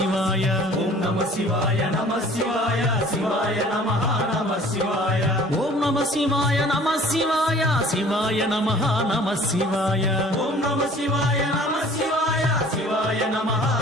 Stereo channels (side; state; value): both; normal; correlation 0.50